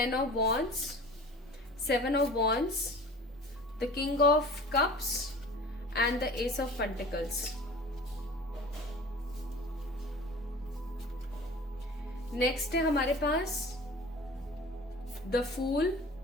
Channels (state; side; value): normal; both; correlation 0.41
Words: of wands, 7 of wands, the king of cups and the ace of pentacles. Next है हमारे पास the fool,